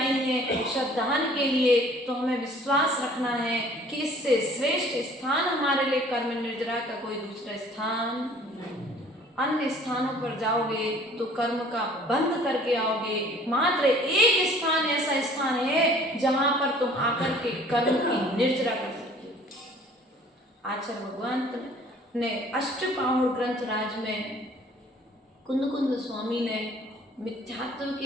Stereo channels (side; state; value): both; normal; correlation 0.53